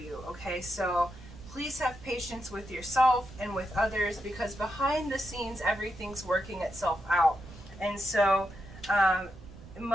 Okay, so please have patience with yourself and with others, because behind the scenes, everything's working itself out. And so,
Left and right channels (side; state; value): right; noise; rumble, 17 dB below the sound